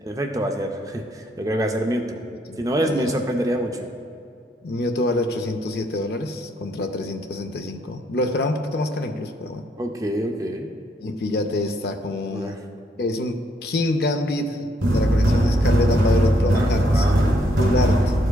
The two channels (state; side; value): normal; both; correlation 0.71